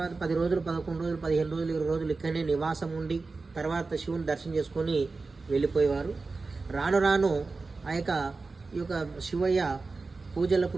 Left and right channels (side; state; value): left; quieter; 4.0 dB